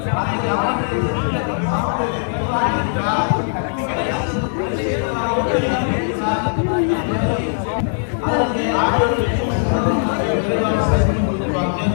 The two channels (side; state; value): right; silent; digital silence